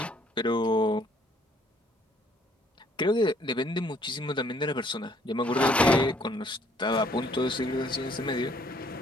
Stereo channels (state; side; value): normal; both; correlation 0.63